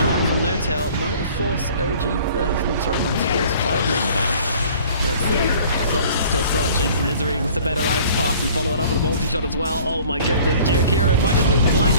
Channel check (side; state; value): both; inverted; correlation -0.50